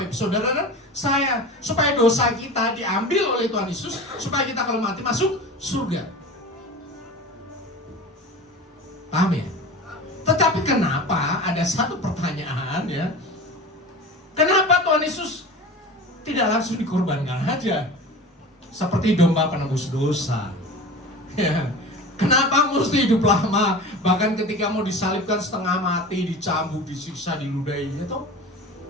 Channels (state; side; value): normal; both; correlation 0.34